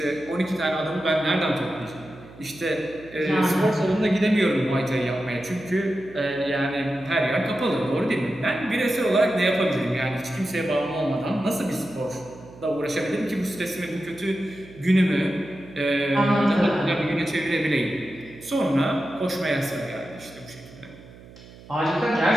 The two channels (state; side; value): noise; right; hum, 20 dB below the sound